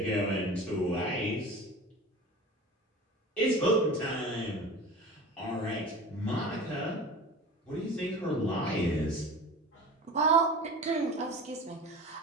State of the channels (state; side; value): normal; both; correlation 0.36